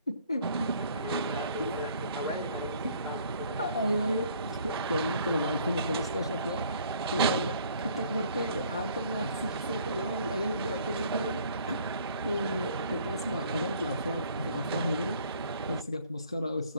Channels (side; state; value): both; inverted; correlation -0.57